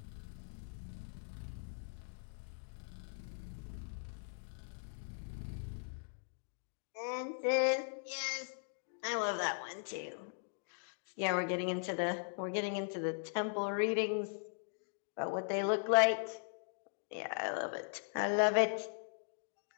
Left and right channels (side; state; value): right; silent; digital silence